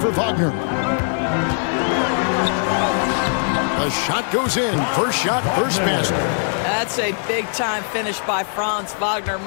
Wagner. The shot goes in. First shot, first basket. That's a big-time finish by Franz Wagner.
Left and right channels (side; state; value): right; silent; 65 dB below the other